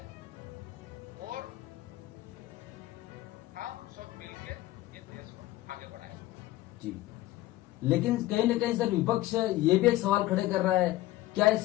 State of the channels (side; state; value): right; quieter; 16.6 dB